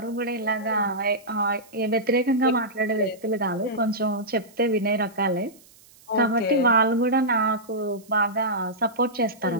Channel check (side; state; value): right; noise; hiss, 26 dB below the sound